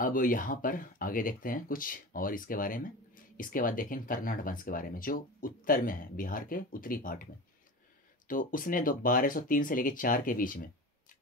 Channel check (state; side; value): normal; both; correlation 0.30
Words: यहाँ पर आगे देखते हैं कुछ और इसके बारे में। इसके बाद देखेंगे कर्नाड वंश के बारे में, जो उत्तर में है, बिहार के उत्तरी पार्ट में। तो उसने 1203 से लेकर 4 के बीच में,